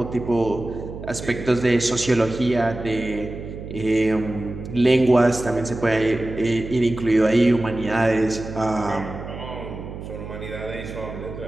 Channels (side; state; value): right; noise; hum, 10 dB below the sound